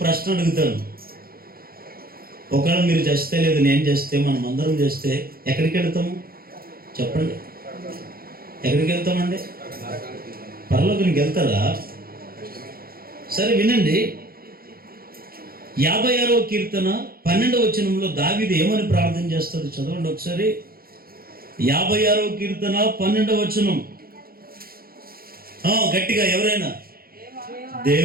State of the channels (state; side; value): late; left; 0.43 ms